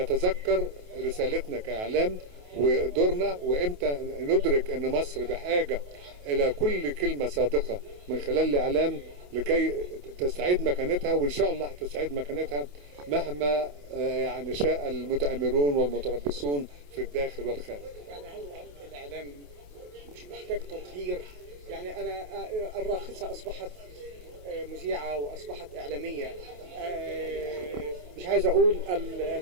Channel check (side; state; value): left; late; 28 ms